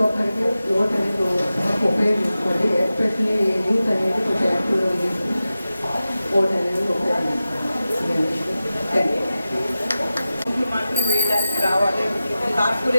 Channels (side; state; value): both; inverted; correlation -0.94